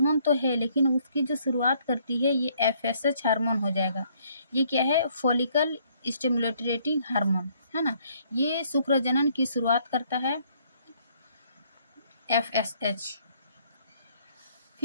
तो है, लेकिन उसकी जो शुरुआत करती है ये FSH हार्मोन हो जाएगा। ये क्या है? फॉलिकल स्टिमुलेटिंग हार्मोन, है ना। ये शुक्र जनन की शुरुआत करता है FSH।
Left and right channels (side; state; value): both; inverted; correlation -0.66